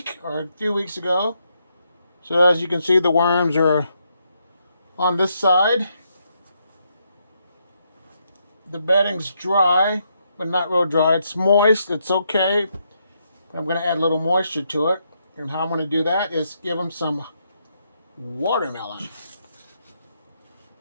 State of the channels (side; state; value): both; inverted; correlation -0.78